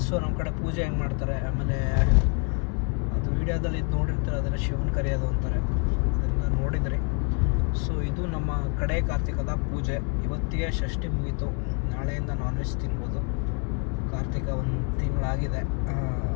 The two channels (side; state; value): right; quieter; 36.2 dB